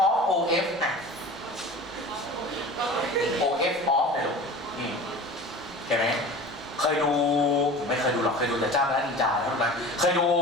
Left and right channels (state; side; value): normal; both; correlation 0.38